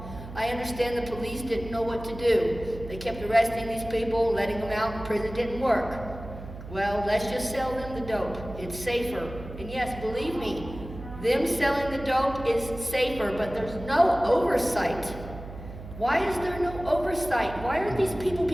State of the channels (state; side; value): noise; right; hum, 12 dB below the sound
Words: I understand the police didn't know what to do. They kept arresting these people, letting them out, and prison didn't work. Well, let's just sell them the dope. It's safer. And yes, believe me, them selling the dope is safer, but there's no oversight. Why is there no oversight? Why aren't these people